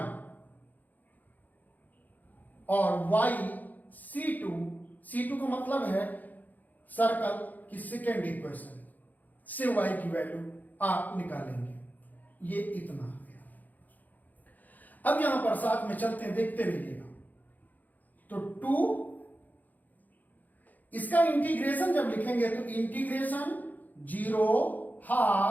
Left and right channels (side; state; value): right; late; 0.082 ms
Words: और y C2 का मतलब है सर्कल की सेकेंड इक्वेशन से y की वैल्यू आप निकालेंगे। ये इतना हो गया। अब यहां पर साथ में चलते हैं, देखते रहिएगा। तो 2, इसका इंटीग्रेशन जब लिखेंगे तो इंटीग्रेशन 0